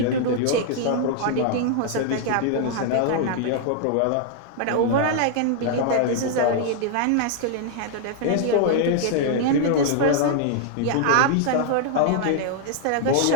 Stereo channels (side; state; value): both; different; correlation 0.00